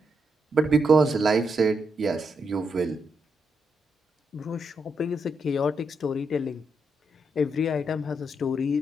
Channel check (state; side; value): normal; both; correlation 0.81